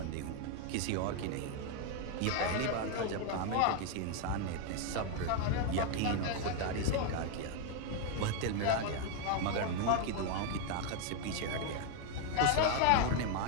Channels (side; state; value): both; different; correlation 0.01